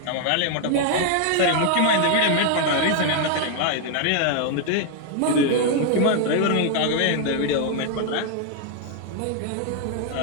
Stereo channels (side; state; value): both; different; correlation 0.00